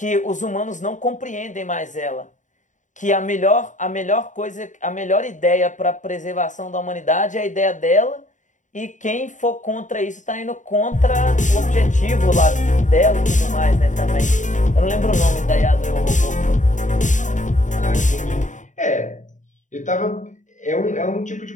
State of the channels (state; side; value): late; right; 0.36 ms